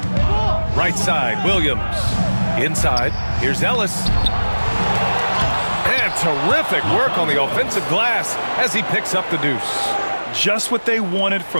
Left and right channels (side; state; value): both; inverted; correlation -1.00